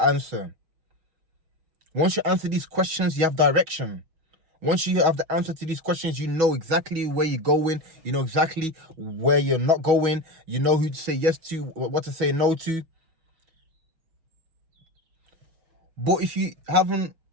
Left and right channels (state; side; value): late; left; 6.2 ms